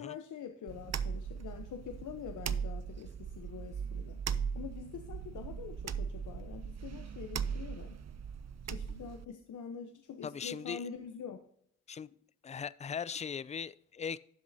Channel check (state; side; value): normal; both; correlation 0.46